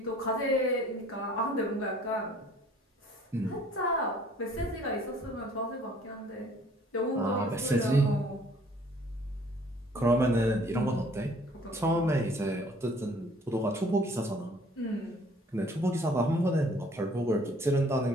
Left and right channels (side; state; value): both; normal; correlation 0.56